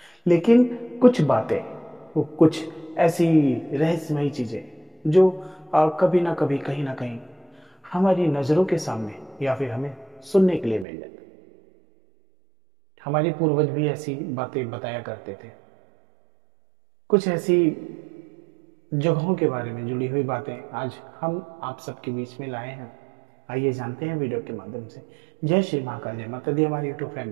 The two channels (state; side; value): drops out; left; at 10.9 s